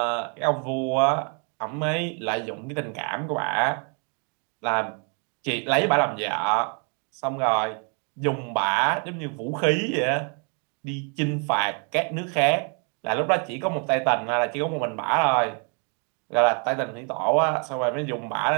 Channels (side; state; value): left; quieter; 38.1 dB